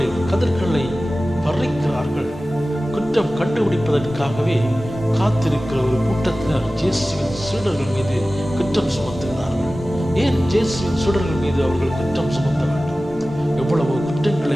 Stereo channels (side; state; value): both; normal; correlation 0.96